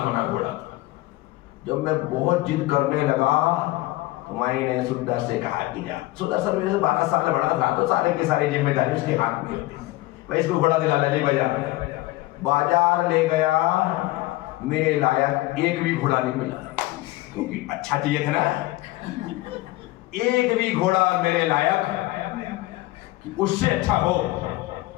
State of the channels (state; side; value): quieter; right; 18.7 dB